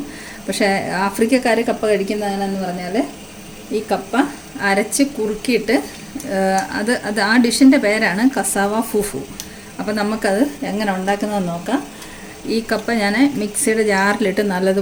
പക്ഷേ ആഫ്രിക്കക്കാർ കപ്പ കഴിക്കുന്നതെന്ന് പറഞ്ഞാൽ ഈ കപ്പ അരച്ച് കുറുക്കിയിട്ട് അത് ആ ഡിഷിൻ്റെ പേരാണ് കസാവ ഫുഫു. അപ്പോൾ നമുക്കത് എങ്ങനെ ഉണ്ടാക്കുന്നതെന്ന് നോക്കാം. ഈ കപ്പ ഞാൻ മിക്സിയുടെ ജാറിലിട്ട്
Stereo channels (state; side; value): identical; both; correlation 1.00